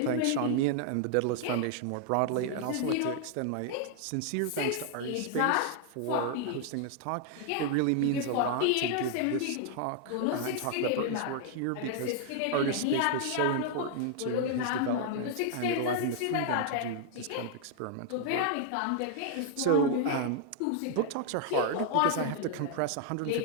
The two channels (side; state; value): both; different; correlation 0.00